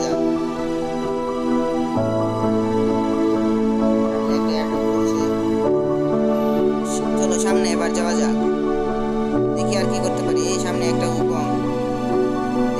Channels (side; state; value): both; identical; correlation 1.00